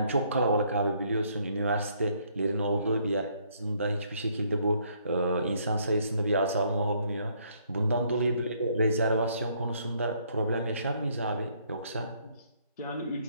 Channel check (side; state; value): both; inverted; correlation -0.68